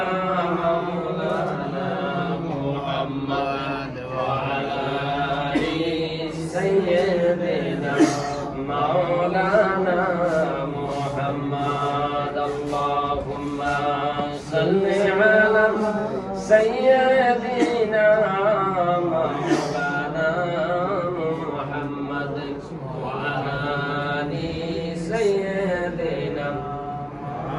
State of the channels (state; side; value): identical; both; correlation 1.00